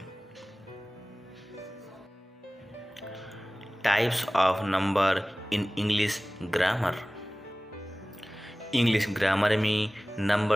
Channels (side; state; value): both; normal; correlation 0.98